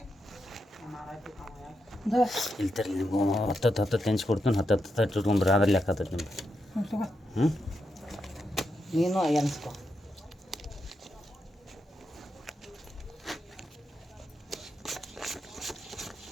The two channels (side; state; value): both; normal; correlation 0.84